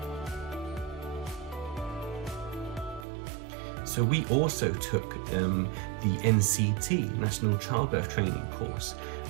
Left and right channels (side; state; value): left; drops out; at 3.1 s